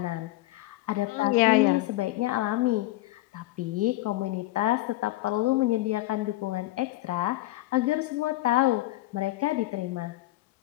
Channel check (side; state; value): right; quieter; 17.5 dB